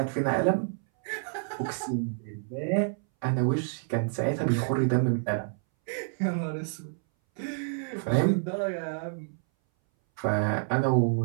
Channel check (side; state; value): left; silent; 59 dB below the other